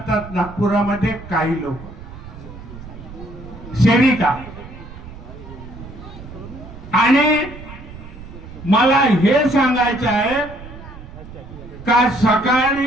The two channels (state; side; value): noise; right; rumble, 15 dB below the sound